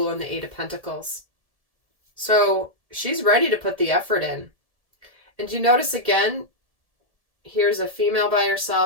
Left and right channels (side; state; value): left; late; 1.7 ms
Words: and the Eight of Pentacles. So she's ready to put the effort in. And you notice again, here's a female by